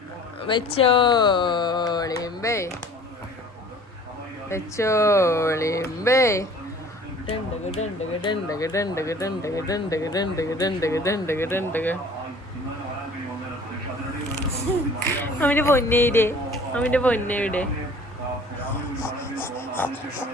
വെച്ചോളിമ്പേ വെച്ചോളിമ്പേ. ഡണ്ടക ഡണ്ടക ഡണ്ടക ഡണ്ടക ഡണ്ടക ഡണ്ടക ഡണ്ടക ഡണ്ടക ഡണ്ടക ഡണ്ടക. അവന്റെ പൊന്നയുടെ അവന്റെ പൊന്നയുടെ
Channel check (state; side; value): normal; both; correlation 0.49